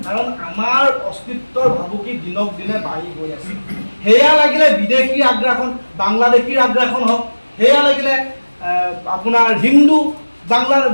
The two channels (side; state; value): both; inverted; correlation -1.00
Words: কাৰণ আমাৰ অস্তিত্বৰ ভাবুকি দিনক দিনে বাঢ়ি গৈ আছে। সেয়া লাগিলে বিদেশীৰ আগ্ৰাসন, বাংলাদেশীৰ আগ্ৰাসন হওক, সেয়া লাগিলে আপোনাৰ বাংলাৰ